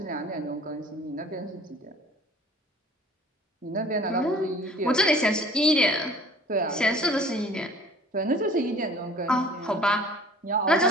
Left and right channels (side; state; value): both; normal; correlation 0.50